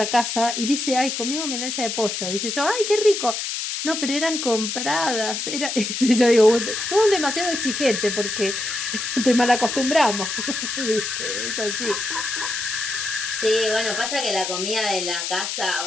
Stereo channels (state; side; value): noise; left; hiss, 3 dB below the sound